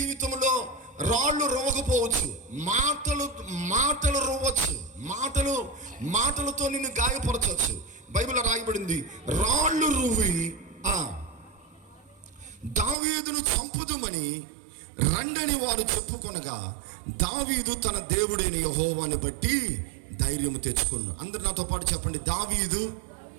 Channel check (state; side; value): drops out; left; at 13.0 s